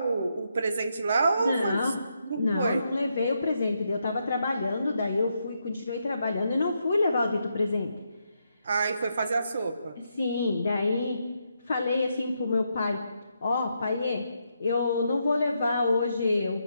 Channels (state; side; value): inverted; both; correlation -0.81